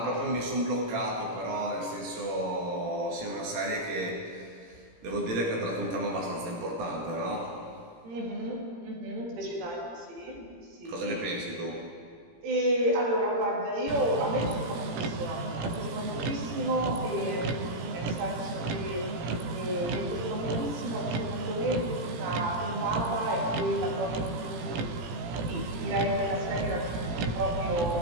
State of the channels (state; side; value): late; left; 17 ms